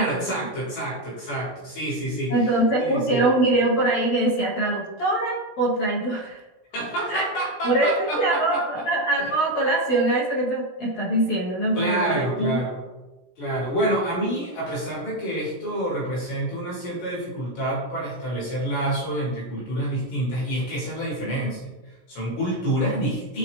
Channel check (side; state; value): right; late; 16 ms